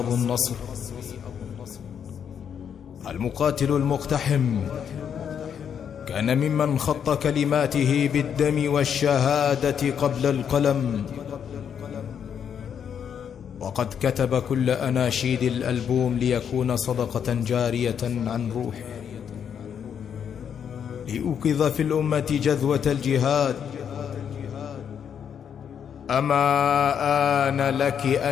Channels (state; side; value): quieter; right; 8.0 dB